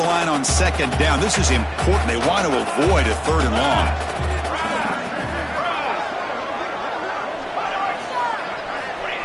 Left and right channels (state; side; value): identical; both; correlation 1.00